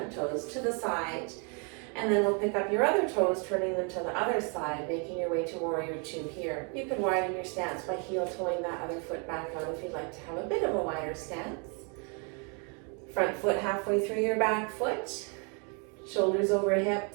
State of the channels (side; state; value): left; quieter; 35.6 dB